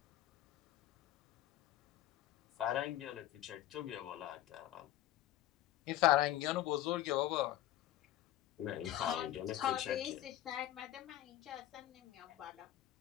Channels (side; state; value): right; quieter; 13.6 dB